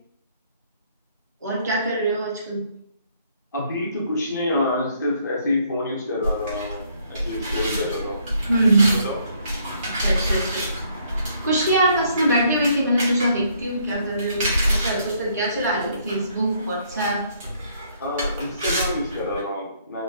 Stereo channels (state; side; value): inverted; both; correlation -0.67